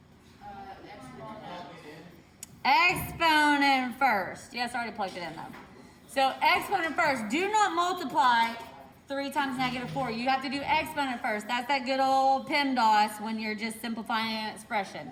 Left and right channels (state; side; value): identical; both; correlation 1.00